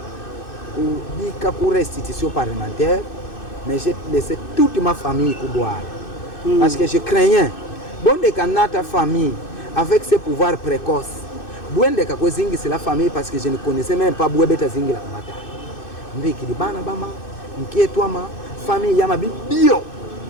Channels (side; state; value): right; late; 2.6 ms